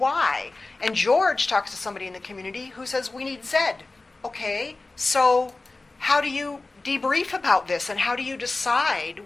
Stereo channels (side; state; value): right; quieter; 3.4 dB